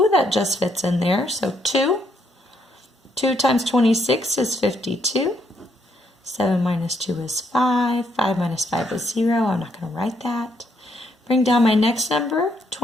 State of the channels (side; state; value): both; normal; correlation 0.73